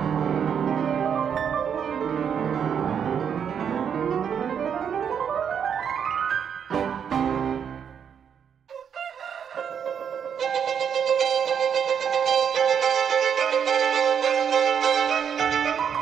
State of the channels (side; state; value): left; quieter; 7.8 dB